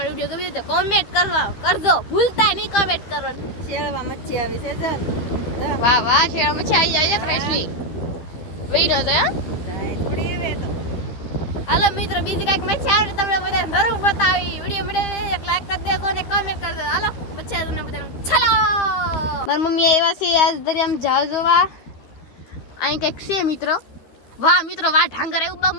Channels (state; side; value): late; right; 13 ms